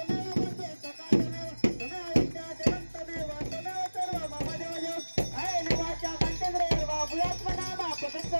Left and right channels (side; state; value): both; inverted; correlation -1.00